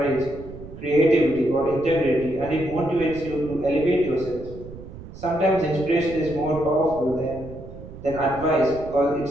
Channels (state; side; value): noise; right; rumble, 14 dB below the sound